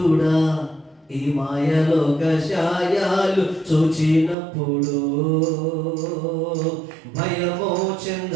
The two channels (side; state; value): left; drops out; at 4.4 s